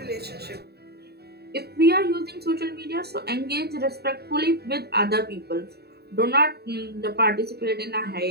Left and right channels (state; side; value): late; left; 0.47 ms